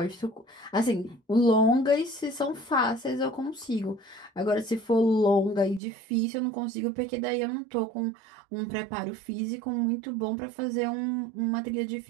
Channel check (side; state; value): left; drops out; at 5.8 s